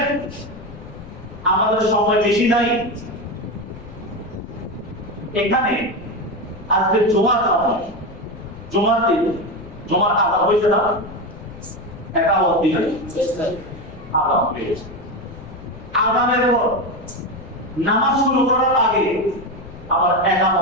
আমাদের সময় বেশি নাই। এখানে আজকে জুমার সময়, জুমার দিন, জুমার আজান হয়েছে না? একামত দিন আজান হয়েছে। আজানের পর নামাজ শুরু করার আগে আবার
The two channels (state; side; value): noise; left; rumble, 16 dB below the sound